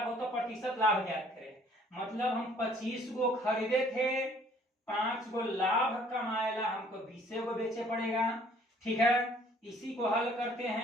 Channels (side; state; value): both; normal; correlation 0.58